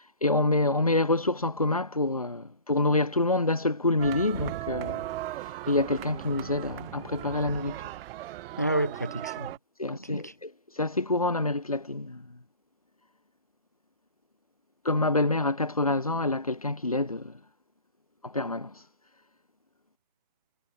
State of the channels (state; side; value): inverted; both; correlation -0.43